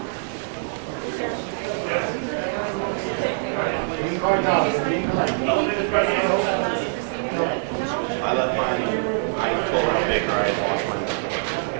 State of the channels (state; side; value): silent; left; digital silence